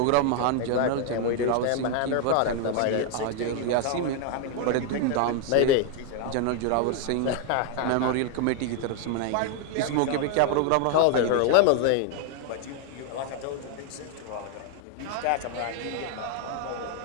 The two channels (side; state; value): both; different; correlation 0.00